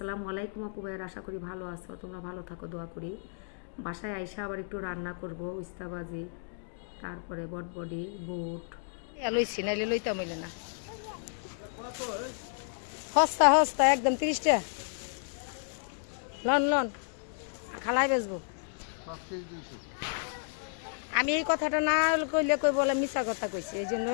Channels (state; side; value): silent; right; digital silence